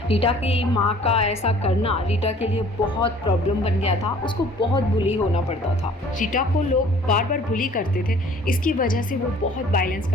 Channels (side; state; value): both; normal; correlation 0.53